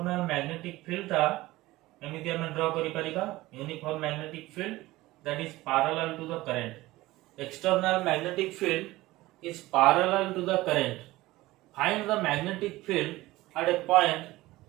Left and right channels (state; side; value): quieter; left; 18.3 dB